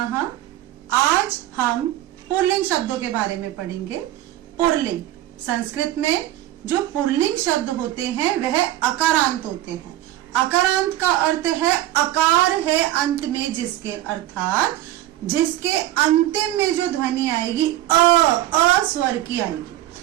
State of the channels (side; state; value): left; quieter; 14.3 dB